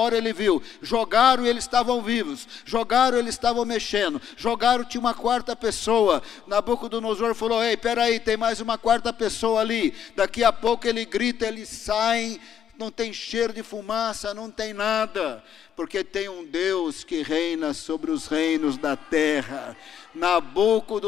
ele viu. Jogaram e eles estavam vivos. Jogaram e eles estavam mexendo. Jogaram, tinha uma quarta pessoa. Nabucodonosor falou: ei, peraí, tem mais uma quarta pessoa ali. Daqui a pouco ele grita, eles saem. Não tem cheiro de fumaça, não tem nada, porque tem um Deus que reina sobre os reinos da terra.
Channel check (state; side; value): quieter; right; 8.9 dB